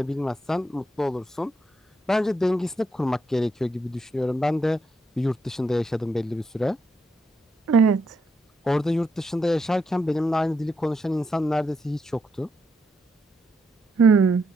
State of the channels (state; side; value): normal; both; correlation 0.78